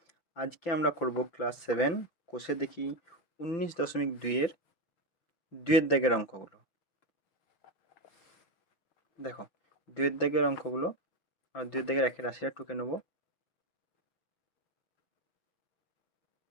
আজকে আমরা করব ক্লাস 7 কোষে দেখি 19.2 এর 2-এর দাগের অঙ্কগুলো। দেখো 2-এর দাগের অঙ্কগুলো আর 2-এর দাগের একের রাশিটা টুকে নেব।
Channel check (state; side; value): late; right; 5.9 ms